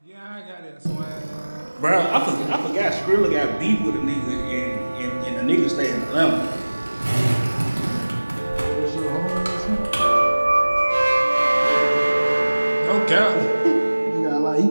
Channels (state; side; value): inverted; both; correlation -1.00